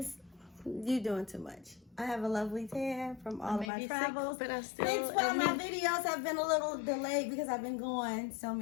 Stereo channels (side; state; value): right; drops out; at 3.7 s